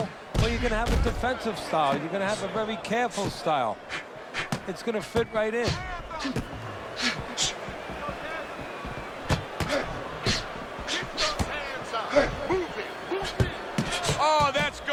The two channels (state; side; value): identical; both; correlation 1.00